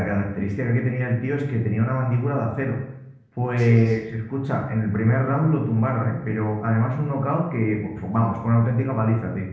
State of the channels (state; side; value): identical; both; correlation 1.00